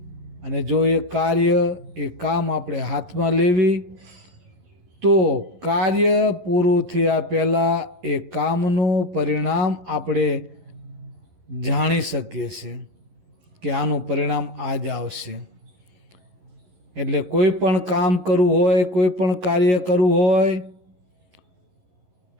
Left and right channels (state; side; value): late; left; 11 ms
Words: અને જો એ કાર્ય, એ કામ આપણે હાથમાં લેવી, તો કાર્ય પૂરું થયા પહેલાં એ કામનું પરિણામ આપણે જાણી શકીએ છીએ કે આનું પરિણામ આ જ આવશે. એટલે કોઈ પણ કામ કરવું હોય, કોઈ પણ કાર્ય કરવું હોય